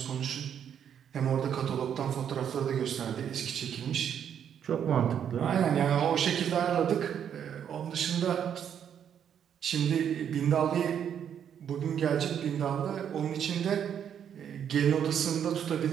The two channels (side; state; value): left; quieter; 8.7 dB